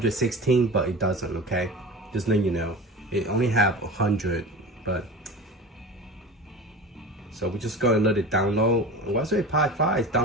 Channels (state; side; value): normal; both; correlation 0.32